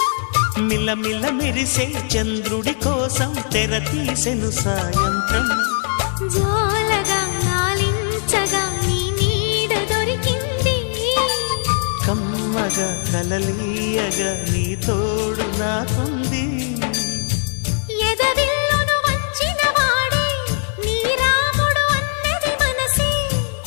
మిలమిల మెరిసే చంద్రుడి కోసం తెర తీసెను సాయంత్రం. జోలగా లాలించగా నీ నీడ దొరికింది. కమ్మగా కలలీయగా నీ తోడు నాకుంది. ఎదవిల్లును వంచిన వాడే నీ రాముడు అన్నది మనసే.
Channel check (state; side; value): silent; right; 57 dB below the other